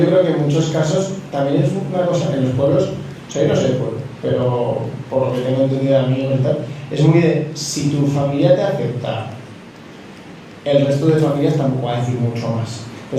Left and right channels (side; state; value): both; identical; correlation 1.00